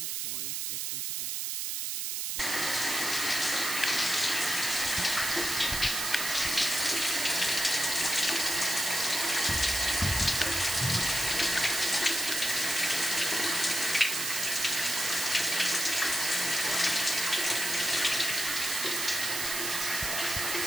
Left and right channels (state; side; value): noise; right; hiss, 1 dB below the sound